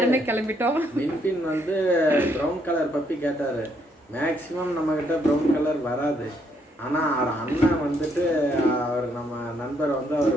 கிளம்பிட்டோம். வின்பின் வந்து ப்ரௌன் கலர் பப்பி கேட்டார். மேக்ஸிமம் நம்மக்கிட்ட ப்ரௌன் கலர் வராது. ஆனால் அவர் அண்ணன் வந்துட்டு அவர் நம்ம நண்பர் வந்து அவர்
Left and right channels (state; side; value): normal; both; correlation 0.72